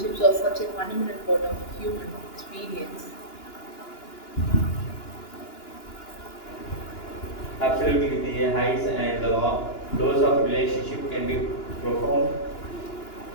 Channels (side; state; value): right; late; 2.9 ms